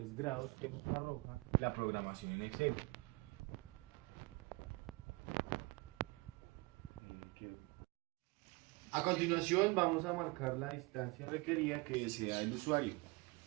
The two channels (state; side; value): quieter; left; 25.7 dB